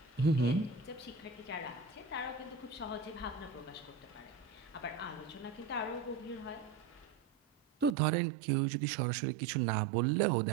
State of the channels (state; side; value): drops out; left; at 8.0 s